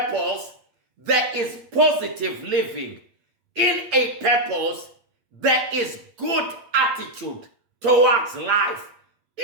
there is positive living. In a purpose, there is good attitude towards life.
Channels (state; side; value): late; left; 8.6 ms